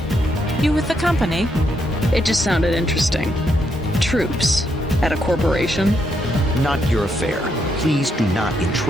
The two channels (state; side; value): normal; both; correlation 0.78